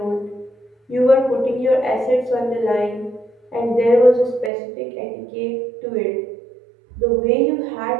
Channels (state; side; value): drops out; left; at 4.5 s